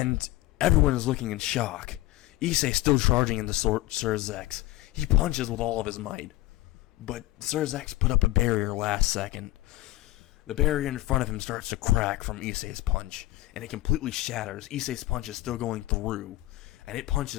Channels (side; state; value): right; quieter; 17.4 dB